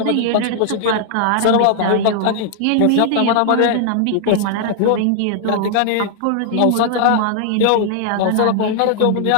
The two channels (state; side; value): different; both; correlation -0.01